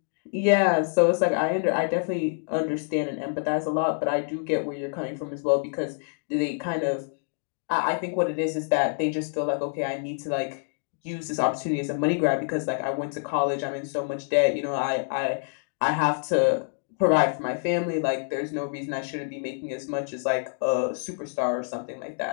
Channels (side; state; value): right; silent; digital silence